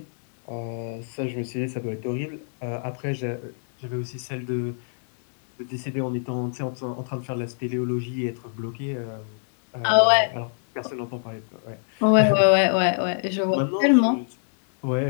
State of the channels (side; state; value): right; silent; 62 dB below the other